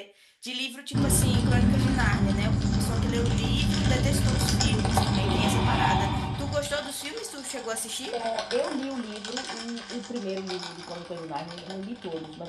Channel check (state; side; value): identical; both; correlation 1.00